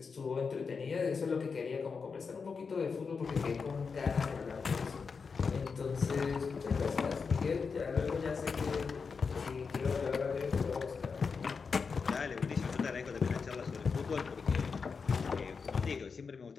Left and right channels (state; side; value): quieter; right; 5.3 dB